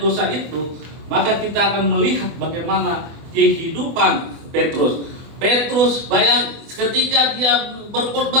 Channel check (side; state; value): left; late; 24 ms